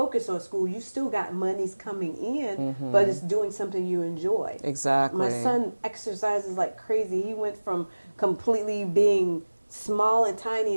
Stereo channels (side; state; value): both; inverted; correlation -1.00